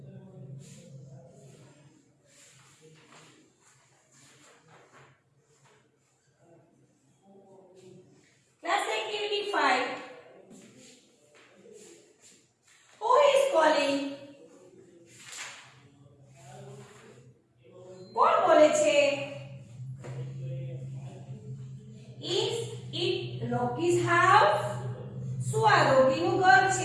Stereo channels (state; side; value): identical; both; correlation 1.00